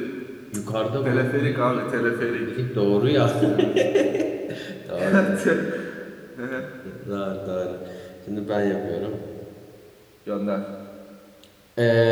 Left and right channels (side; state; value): both; identical; correlation 1.00